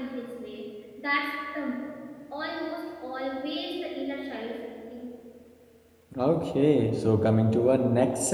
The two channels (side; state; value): both; identical; correlation 1.00